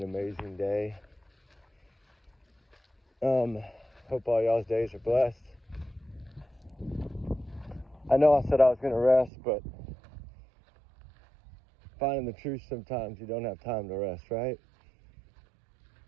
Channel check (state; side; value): drops out; left; at 9.3 s